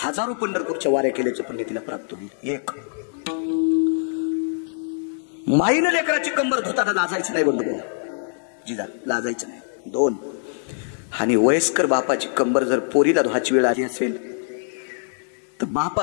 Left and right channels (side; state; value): right; silent; 62 dB below the other